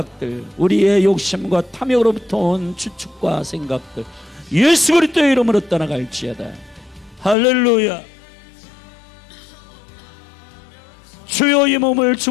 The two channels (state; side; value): drops out; right; at 7.4 s